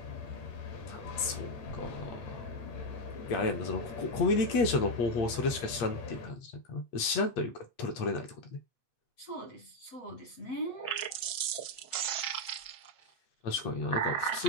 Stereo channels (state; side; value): late; right; 8.5 ms